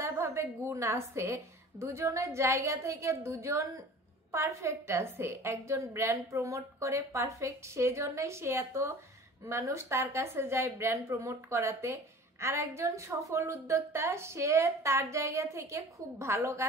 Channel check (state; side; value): normal; both; correlation 0.43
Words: গুণ আছে, দুজনের জায়গা থেকে দুজন পারফেক্ট আছে। একজন ব্র্যান্ড প্রমোট করে পারফেক্ট, সেজন্যই সে এত মানুষ তার কাছে যায় ব্র্যান্ড প্রমোট করাতে। আর একজন সফল উদ্যোক্তা, সে তার জায়গা থেকে খুব ভালো